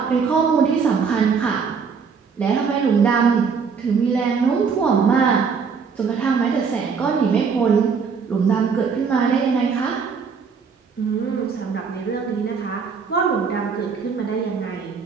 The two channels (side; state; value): left; quieter; 5.8 dB